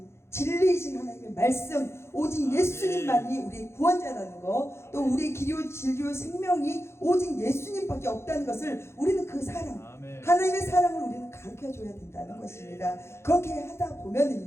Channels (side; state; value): right; late; 0.13 ms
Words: 진리이신 하나님의 말씀, 오직 예수님만이 우리의 구원자라는 거, 또 우리의 길이요 진리요 생명이 오직 예수님밖에 없다는 것을 우리는 그 사랑, 하나님의 사랑을 우리는 가르쳐 줘야 된다는 것입니다. 그렇게 하다